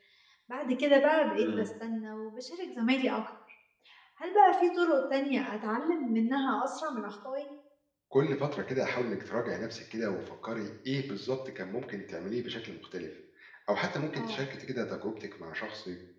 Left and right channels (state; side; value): identical; both; correlation 1.00